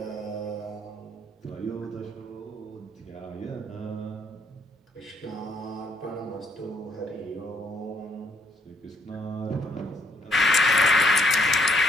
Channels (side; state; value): both; normal; correlation 0.69